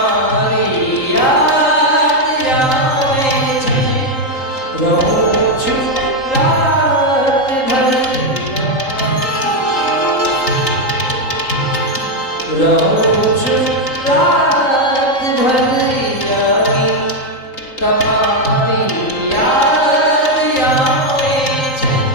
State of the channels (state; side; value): late; right; 3.8 ms